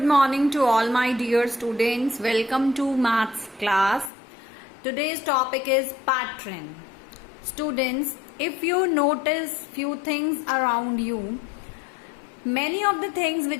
morning to all my dear students. Welcome to maths class. Today's topic is pattern. Students, if you notice few things around you, many of the things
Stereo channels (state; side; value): drops out; right; at 4.1 s